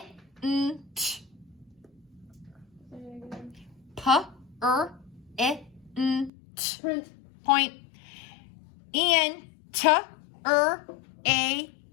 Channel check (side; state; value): right; drops out; at 6.3 s